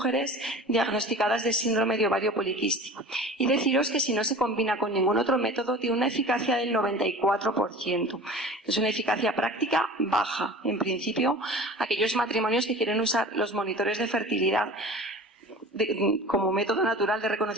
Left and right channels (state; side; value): normal; both; correlation 0.39